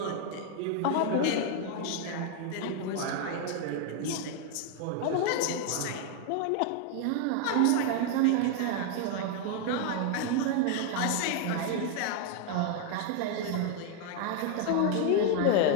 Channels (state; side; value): different; both; correlation 0.00